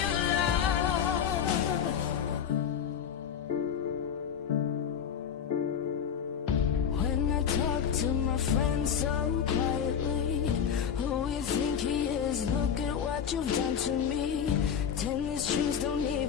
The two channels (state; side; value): quieter; right; 8.0 dB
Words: your love. When I talk to my friends so quietly, who you think he is? Look at what you've done to me. Tennis shoes, don't